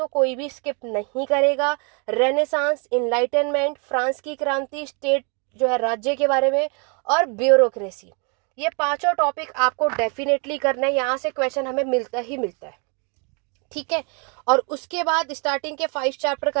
कोई भी स्किप नहीं करेगा। रेनेसांस, इनलाइटनमेंट, फ्रांस की क्रांति, स्टेट जो है राज्य के बारे में, और ब्यूरोक्रेसी। ये पांचों टॉपिक आपको डेफिनेटली करना है, यहाँ से क्वेश्चन हमें मिलता ही मिलता है, ठीक है। और उसके बाद स्टार्टिंग के 5 चैप्टर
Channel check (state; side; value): quieter; left; 35.7 dB